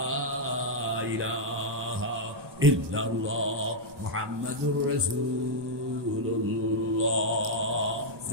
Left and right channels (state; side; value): late; left; 1.0 ms